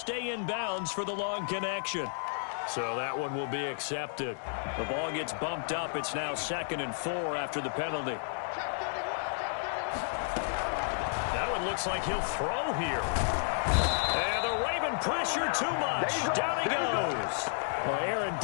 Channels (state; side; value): silent; right; digital silence